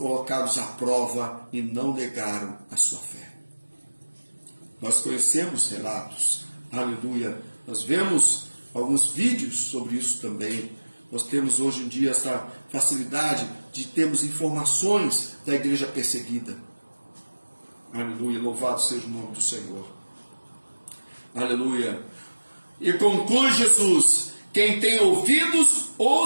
à prova e não negaram a sua fé. Nós conhecemos relatos, aleluia, nós vemos alguns vídeos sobre isso também. Nós temos hoje em dia essa facilidade de termos informações da igreja perseguida. Aleluia, louvado seja o nome do Senhor. Aleluia. E conclui Jesus: Quem tem ouvidos,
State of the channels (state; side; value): inverted; both; correlation -1.00